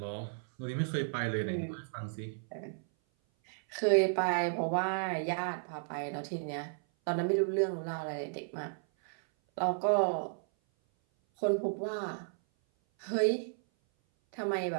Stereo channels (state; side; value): silent; left; 55 dB below the other